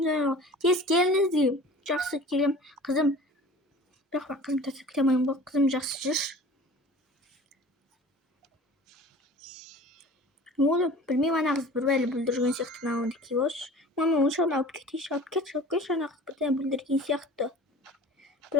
Тез келіңіз деймін. Жақсы келем. Қызым. Бірақ қызым тасып кетемеймін ғой. Қызым жақсы жүрші. Не болды? Білмеймін, ана қыз бір бәлі білдірген сияқты науынды келеші. Мама, оншағын алып кетейші. Алып кетші, ана қыз бірден білдірген сияқты.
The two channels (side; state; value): both; normal; correlation 0.42